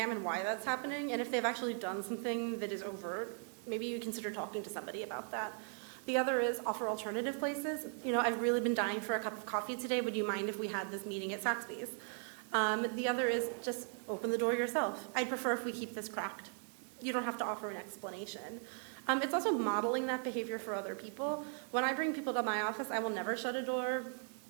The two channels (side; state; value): left; silent; 52 dB below the other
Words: why that's happening, and if they've actually done something that is overt, maybe you consider talking to somebody about that. The other is offer alternative places. You know, I've really been dying for a cup of coffee today. Would you mind if we had this meeting at Saxby's? The other is just open the door yourself. I prefer if we keep this cracked. You don't have to offer an explanation. It's also modeling that behavior for other people. When I bring people to my office, I will never shut a door